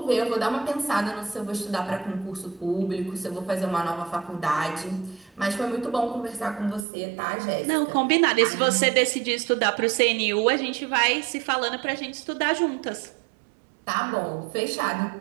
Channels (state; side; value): drops out; left; at 6.9 s